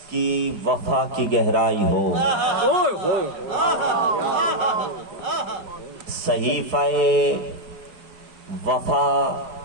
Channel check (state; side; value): late; left; 5.0 ms